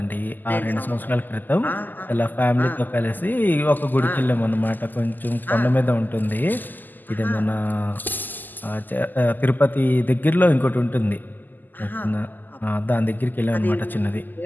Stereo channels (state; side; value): late; right; 0.087 ms